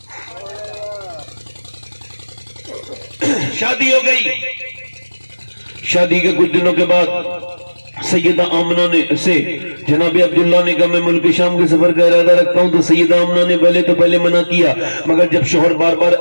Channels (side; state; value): both; inverted; correlation -1.00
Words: شادی ہو گئی، شادی کے کچھ دنوں کے بعد سیدہ آمنہ نے سے جناب عبداللہ نے کہا میں ملک شام کے سفر کا ارادہ رکھتا ہوں، تو سیدہ آمنہ نے پہلے منع کیا، مگر جب شوہر بار بار